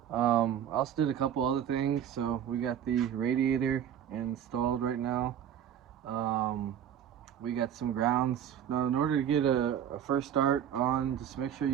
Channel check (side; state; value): left; quieter; 9.6 dB